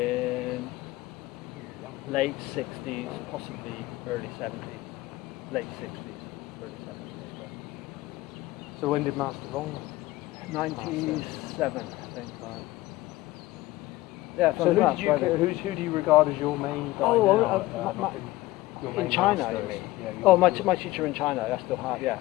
late 60s, possibly early 70s. Late 60s, early 70s. So when did Master Long? 97, I think. Right. Yeah. So who do you regard as your main guy now? In China, you mean? Yeah, my teacher in China, I still have, yeah.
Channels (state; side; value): quieter; right; 18.1 dB